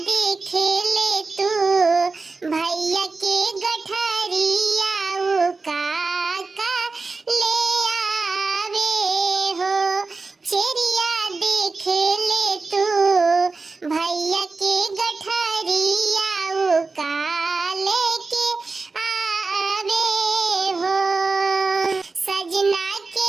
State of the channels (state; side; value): quieter; left; 4.0 dB